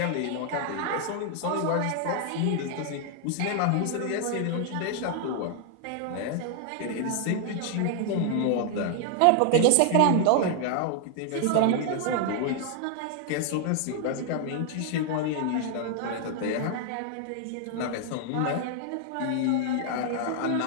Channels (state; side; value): different; both; correlation 0.00